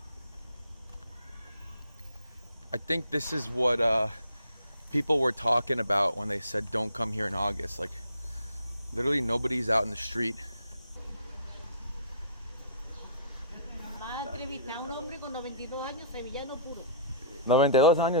I think this is what people were talking about when they said don't come here in August. Like, literally nobody's out in the street. Va a entrevistar a un hombre con 92 años, sevillano puro. 92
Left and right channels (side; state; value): both; inverted; correlation -0.51